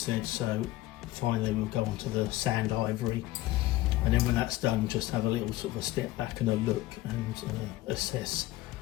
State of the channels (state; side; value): quieter; right; 16.7 dB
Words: said. So finally we'll go on to the sand ivory, and then when that's done, just have a little sort of a step back and a look and assess